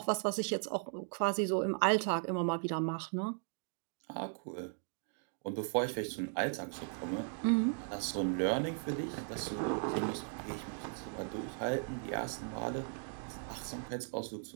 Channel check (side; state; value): left; silent; 53 dB below the other